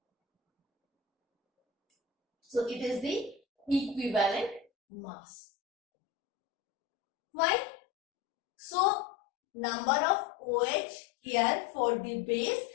So it is the equivalent mass. Why? So number of OH here for the base,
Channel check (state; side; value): drops out; right; at 4.7 s